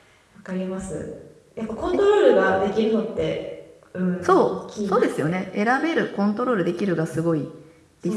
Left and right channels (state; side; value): identical; both; correlation 1.00